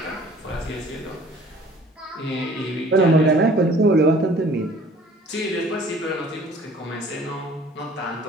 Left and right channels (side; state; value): both; normal; correlation 0.52